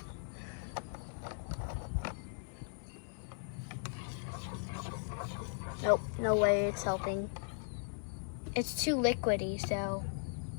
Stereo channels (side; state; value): right; silent; 53 dB below the other